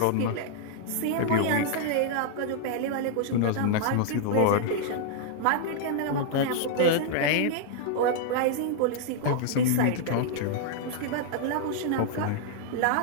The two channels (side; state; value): both; different; correlation -0.01